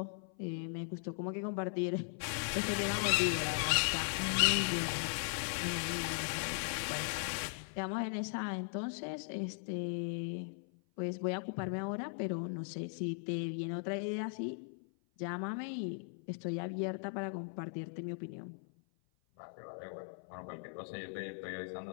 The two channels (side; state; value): right; silent; 52 dB below the other